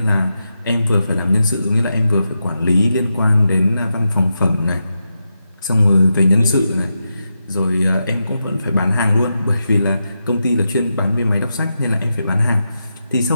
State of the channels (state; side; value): inverted; both; correlation -0.88